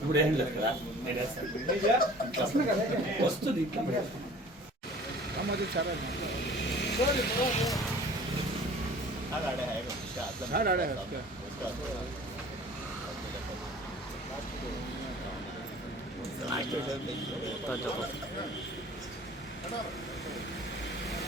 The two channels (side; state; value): both; normal; correlation 0.46